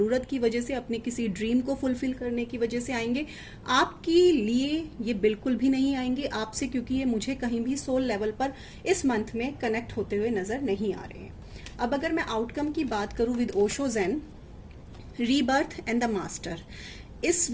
की वजह से, अपने किसी ड्रीम को फुलफिल करने की वजह से आएंगे। आपके लिए ये बिल्कुल भी नहीं आएंगे आपसे, क्योंकि ये मुझे कहीं भी सोल लेवल पर इस मंथ में कनेक्ट होते हुए नजर नहीं आ रहे हैं। अब अगर मैं आउटकम की बात करूं with Osho zen, rebirth and the master, इस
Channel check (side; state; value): both; identical; correlation 1.00